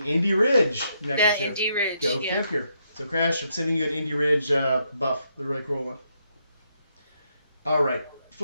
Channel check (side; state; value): both; inverted; correlation -0.77